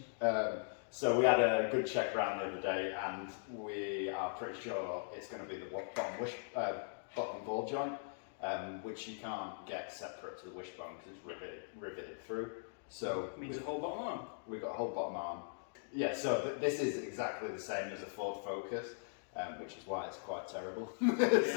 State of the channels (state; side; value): silent; right; digital silence